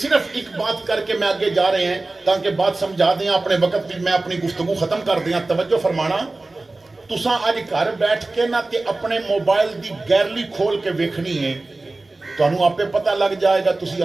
ایک بات کر کے میں آگے جا رہے ہیں تاکہ بات سمجھا دیں، اپنے وقت بھی میں اپنی گفتگو ختم کر دیں۔ توجہ فرمانا، تساں آج گھر بیٹھ کے نہ تے اپنے موبائل دی گیلری کھول کے ویکھنی ہے، تو انہوں آپ پہ پتہ لگ جائے گا تسی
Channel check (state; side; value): quieter; left; 3.1 dB